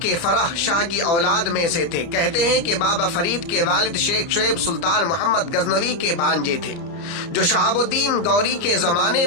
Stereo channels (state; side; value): late; right; 30 ms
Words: کے فرح شاہ کی اولاد میں سے تھے۔ کہتے ہیں کہ بابا فرید کے والد شیخ شعیب سلطان محمد غزنوی کے بھانجے تھے، جو شہاب الدین غوری کے زمانے